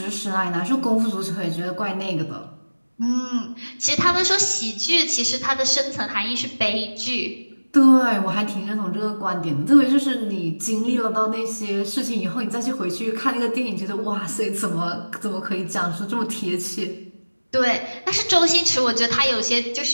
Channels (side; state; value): both; inverted; correlation -1.00